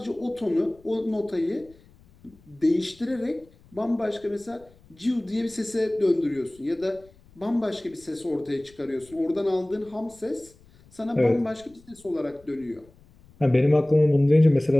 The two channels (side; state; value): left; noise; rumble, 27 dB below the sound